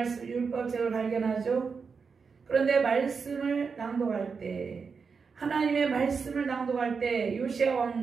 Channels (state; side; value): quieter; left; 5.4 dB